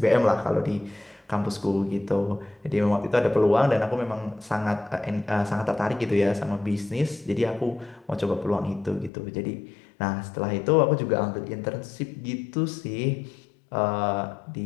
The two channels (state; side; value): drops out; right; at 9.1 s